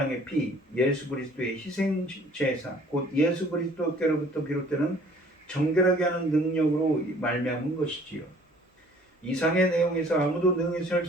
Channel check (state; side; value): normal; both; correlation 0.55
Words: 피, 예수 그리스도의 희생 제사, 곧 예수 그리스도께로부터 비롯되는 정결하게 하는 능력으로 말미암은 것이지요. 이상의 내용에서 아무도 능히 셀